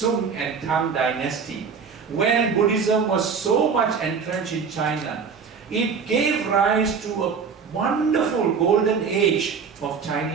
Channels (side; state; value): left; quieter; 5.9 dB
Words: and Tang dynasty, when Buddhism was so much entrenched in China. It gave rise to a wonderful golden age of